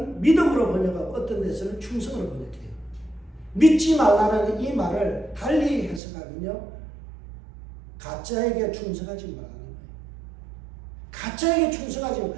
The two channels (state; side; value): drops out; left; at 6.0 s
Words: 믿음으로 번역하고 어떤 데서는 충성으로 번역해요. 믿지 말라는 이 말을 달리 해석하면요, 가짜에게 충성하지 말라는 거예요. 가짜에게 충성하지 마.